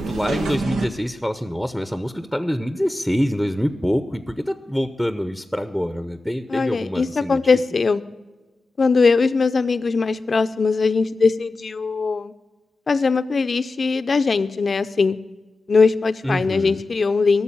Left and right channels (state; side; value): quieter; right; 3.1 dB